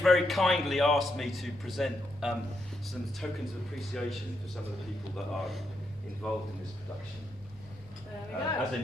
kindly asked me to present some tokens of appreciation for some of the people that are involved in this production. There we go. As a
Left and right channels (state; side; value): normal; both; correlation 0.80